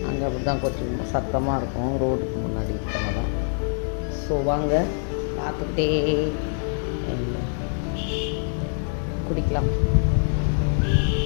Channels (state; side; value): silent; right; 62 dB below the other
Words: அங்கே அப்படி தான் கொஞ்சம் சத்தமாக இருக்கும் ரோடுக்கு முன்னாடி இருக்கனால. ஸோ வாங்க பார்த்துக்கிட்டே குடிக்கலாம்.